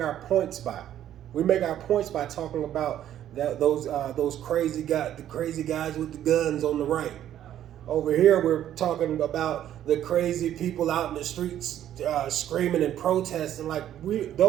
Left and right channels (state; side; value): quieter; left; 11.3 dB